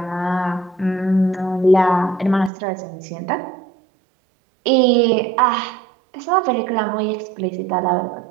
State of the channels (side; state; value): left; drops out; at 2.5 s